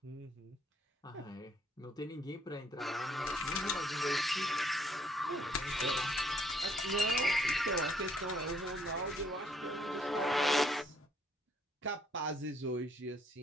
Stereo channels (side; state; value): both; normal; correlation 0.66